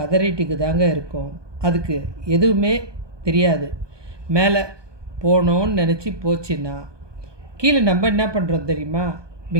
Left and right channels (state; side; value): late; left; 1.2 ms